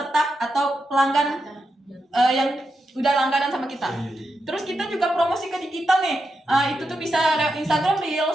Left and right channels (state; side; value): normal; both; correlation 0.86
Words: atau pelanggan yang udah langganan sama kita. Terus kita juga promosi ke digital nih. Itu tuh bisa lewat Instagram